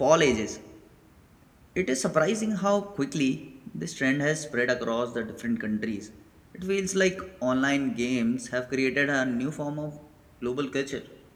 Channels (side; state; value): both; identical; correlation 1.00